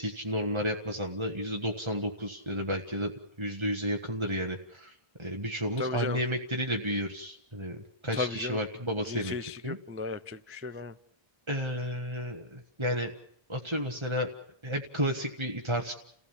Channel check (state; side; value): late; left; 1.3 ms